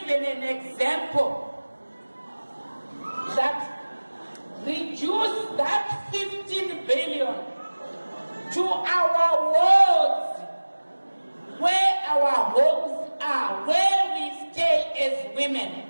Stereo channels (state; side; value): inverted; both; correlation -1.00